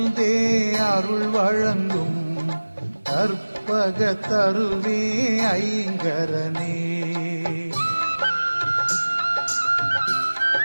அருள் வழங்கும் கற்பக தருவே ஐங்கரனே.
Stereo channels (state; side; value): inverted; both; correlation -1.00